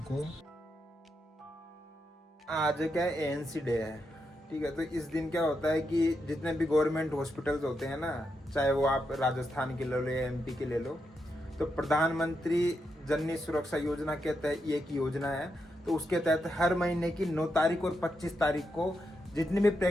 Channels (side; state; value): both; normal; correlation 0.84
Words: आज क्या है, एएनसी डे है, ठीक है। तो इस दिन क्या होता है कि जितने भी गवर्नमेंट हॉस्पिटल्स होते हैं ना, चाहे वो आप राजस्थान के ले लो या एमपी के ले लो, तो प्रधानमंत्री जननी सुरक्षा योजना के तहत ये एक योजना है। तो उसके तहत हर महीने की 9 तारीख और 25 तारीख को जितनी भी